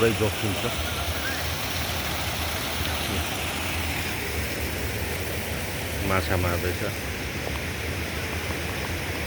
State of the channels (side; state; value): both; identical; correlation 1.00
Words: जोखिम छ माछा मार्दैछ